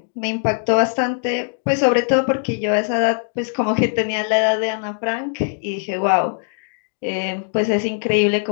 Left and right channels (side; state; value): right; silent; digital silence